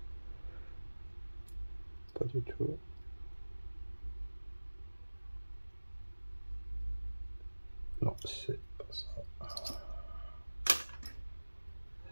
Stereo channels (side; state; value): both; inverted; correlation -1.00